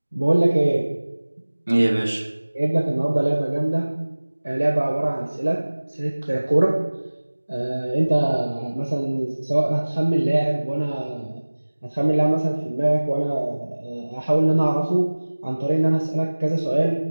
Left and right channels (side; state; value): both; inverted; correlation -1.00